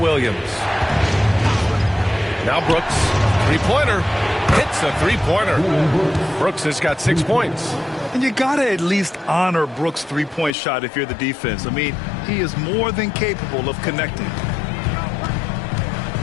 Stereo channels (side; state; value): right; drops out; at 10.5 s